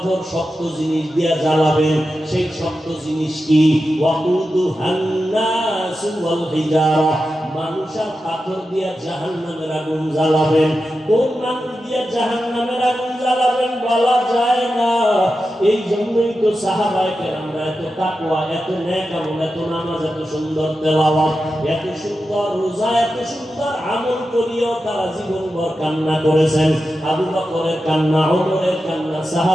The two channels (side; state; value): both; normal; correlation 0.91